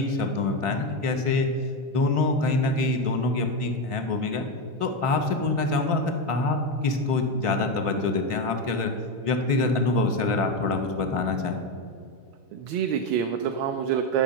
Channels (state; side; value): late; left; 3.6 ms